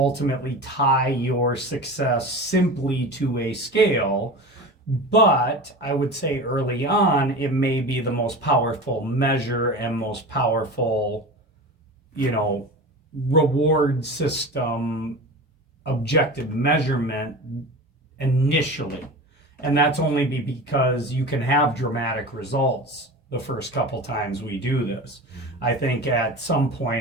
tie your success simply to a scale, but I would say early on, it may be the most powerful measure and most powerful, reward system, objective measurement initially. And that's only because you can have dramatic results the first couple times we do this. I think at some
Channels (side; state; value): both; normal; correlation 0.31